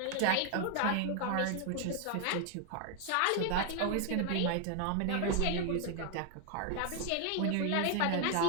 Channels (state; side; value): different; both; correlation 0.01